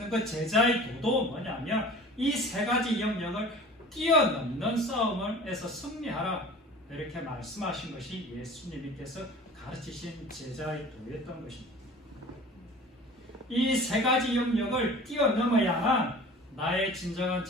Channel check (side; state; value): both; normal; correlation 0.42